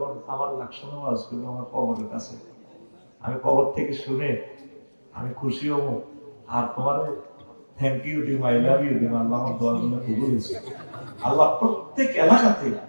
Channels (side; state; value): both; inverted; correlation -1.00